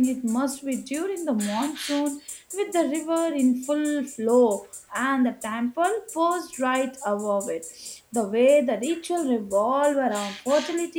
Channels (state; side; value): identical; both; correlation 1.00